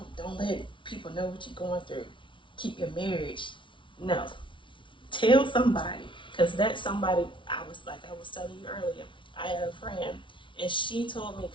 let people know what you're going through. Keep your marriage. No. Tell somebody, because that's somebody. I was telling you earlier. I had a friend, And she told me,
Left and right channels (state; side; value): late; right; 0.24 ms